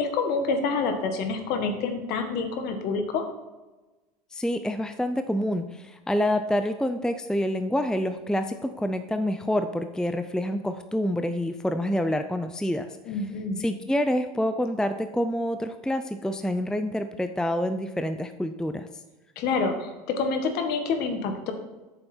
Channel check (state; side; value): normal; both; correlation 0.67